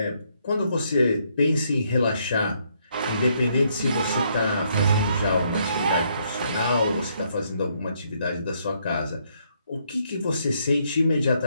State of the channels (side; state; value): both; inverted; correlation -0.72